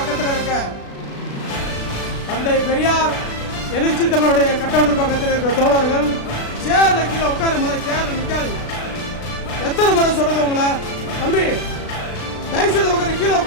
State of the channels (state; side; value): late; right; 36 ms